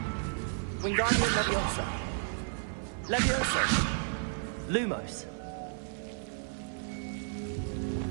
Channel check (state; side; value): silent; left; 56 dB below the other